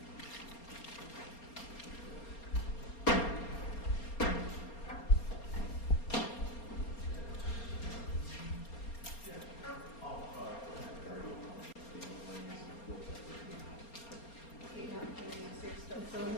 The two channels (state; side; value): late; right; 4.3 ms